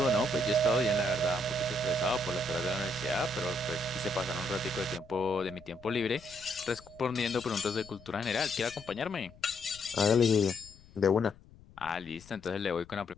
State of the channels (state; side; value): noise; left; rumble, 23 dB below the sound